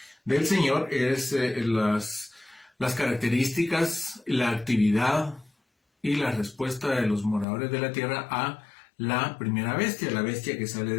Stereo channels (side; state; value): right; drops out; at 7.5 s